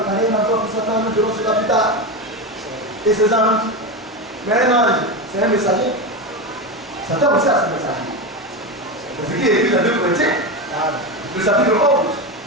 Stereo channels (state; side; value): normal; both; correlation 0.17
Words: un endroit pour Satan, nous verrons cela plus tard. Et ses anges. Mais un ange, c'est un messager. Satan aussi a son messager. C'est ce qui est écrit dans 2 Corinthiens. Le chapitre 11.